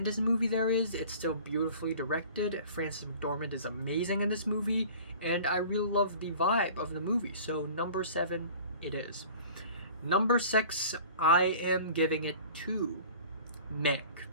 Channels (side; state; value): both; inverted; correlation -0.44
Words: movie there is. It's still beautifully directed. Frances McDormand is amazing in this movie, and I really love the vibe of the movie. So number 7, it is. Number 6, I am giving it to Mank.